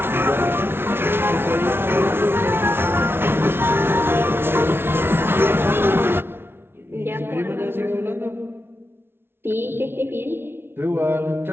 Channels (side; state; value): left; late; 0.11 ms